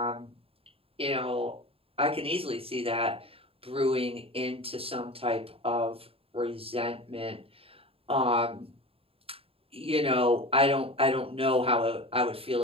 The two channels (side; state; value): left; late; 0.27 ms